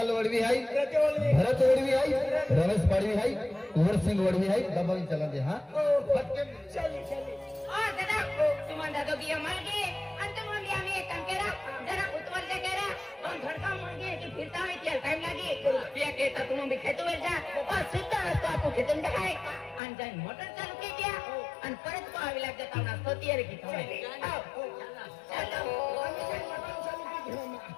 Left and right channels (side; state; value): right; drops out; at 19.8 s